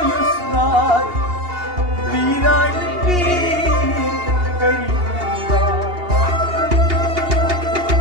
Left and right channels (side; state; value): left; late; 2.8 ms